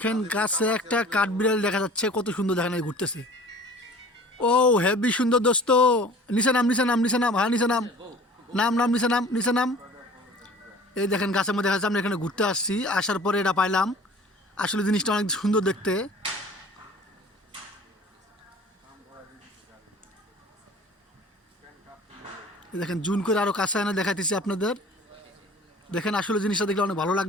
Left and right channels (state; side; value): normal; both; correlation 0.46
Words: গাছে একটা কাঠবিড়ালি দেখা যাচ্ছে, কত সুন্দর দেখেন এই ঘুরতেছে। ও হেভি সুন্দর দোস্ত। নিচে নাম, নিচে নাম, নিচে নাম, হ্যাঁ নিচে নাম, নাম নাম, নিচে নাম, নিচে নাম। এই দেখেন গাছের মধ্যে দেখা যাচ্ছে, আমরা এখানে ঘুরতে আসছি, আসার পরে এটা পাইলাম। আসলে জিনিসটা অনেক সুন্দর দেখতে। এই দেখেন জুন করে আরো কাছে এনে দেখাইতেছি আপনাদের। দেখেন আসলে জিনিসটা দেখলে অনেক ভালো